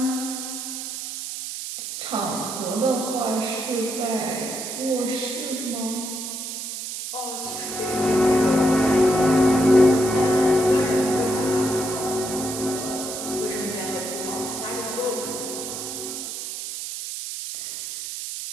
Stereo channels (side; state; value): right; noise; hiss, 6 dB below the sound